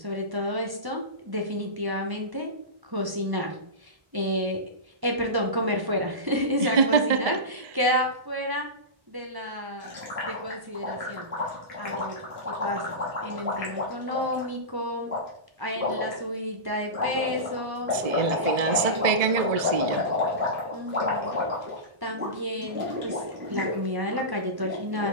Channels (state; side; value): late; left; 1.1 ms